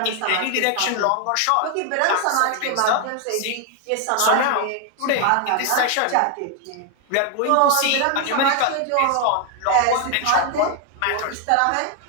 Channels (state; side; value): different; both; correlation 0.00